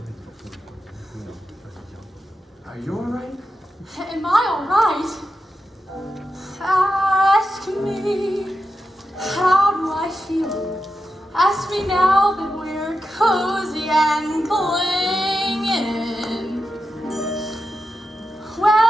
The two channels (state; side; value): normal; both; correlation 0.89